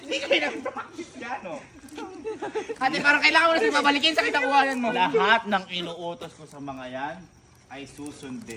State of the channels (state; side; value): identical; both; correlation 1.00